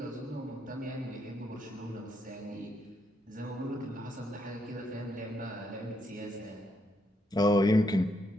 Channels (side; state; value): both; normal; correlation 0.77